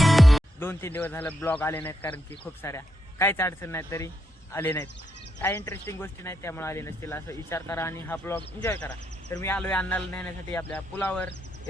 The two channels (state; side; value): normal; both; correlation 0.80